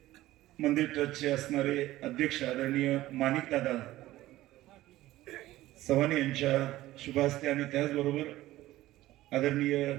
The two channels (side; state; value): left; quieter; 16.1 dB